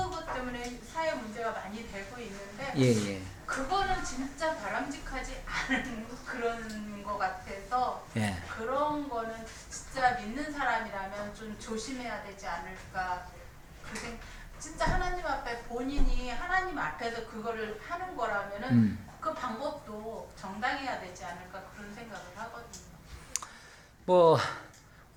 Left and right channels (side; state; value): both; identical; correlation 1.00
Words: 때문에 사회 문제가 많이 되고 있는데 예. 그거는 진짜 바람직하지 않은 그런 것 같아서 예. 그런 거는 진짜 믿는 사람이라면 좀 조심해야 되지 않을까. 진짜 하나님 앞에 본인이 하나님 앞에서 그거를 하는 거라면은 그 방법도 정당해야 되지 않을까 그런 생각을 하거든요. 뭐